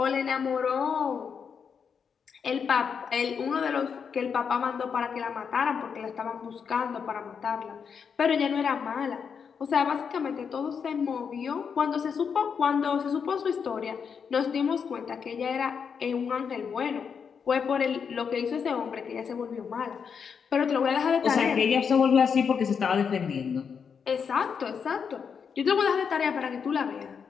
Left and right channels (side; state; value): right; quieter; 6.5 dB